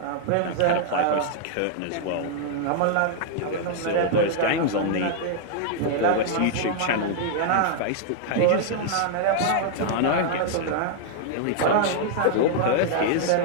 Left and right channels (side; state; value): both; different; correlation -0.01